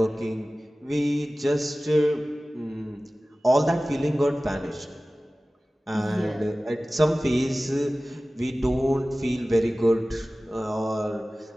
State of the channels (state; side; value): normal; both; correlation 0.97